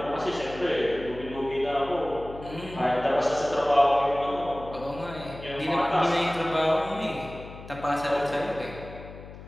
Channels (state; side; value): noise; left; hum, 15 dB below the sound